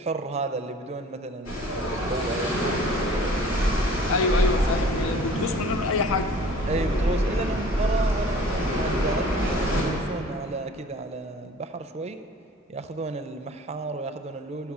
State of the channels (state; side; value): normal; both; correlation 0.47